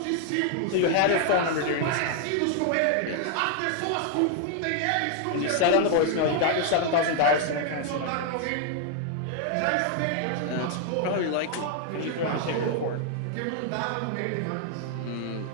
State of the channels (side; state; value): both; different; correlation 0.00